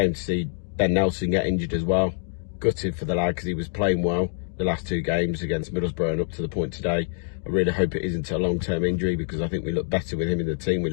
to see Ben Nelson get injured as well. Gutted for the lad because he was playing well the last 2 games against Middlesbrough and up to the point today. I really hope it isn't a long-term injury because I think we look better with him in the team. We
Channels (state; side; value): silent; right; digital silence